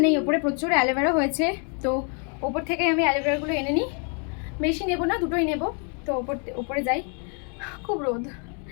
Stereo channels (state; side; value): quieter; right; 39.7 dB